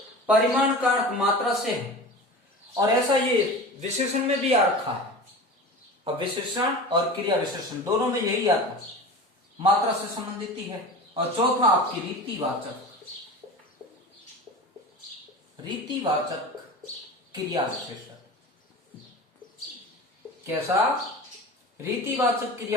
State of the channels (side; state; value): both; normal; correlation 0.33